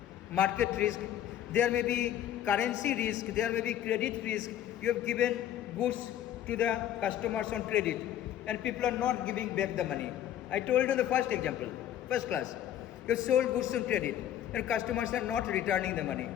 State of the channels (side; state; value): right; quieter; 11.2 dB